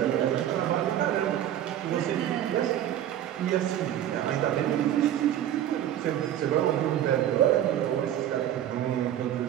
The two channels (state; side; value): quieter; left; 11.4 dB